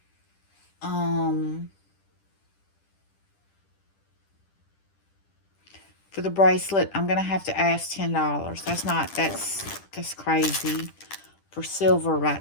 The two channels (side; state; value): right; late; 10 ms